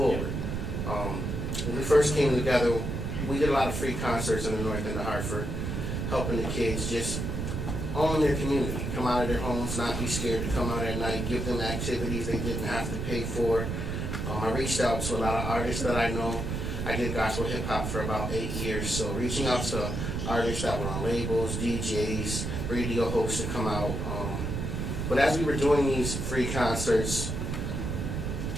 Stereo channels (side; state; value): right; noise; rumble, 3 dB below the sound